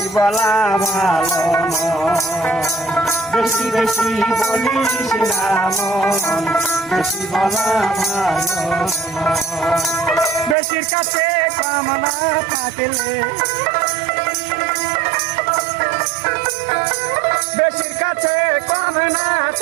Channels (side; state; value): left; drops out; at 10.6 s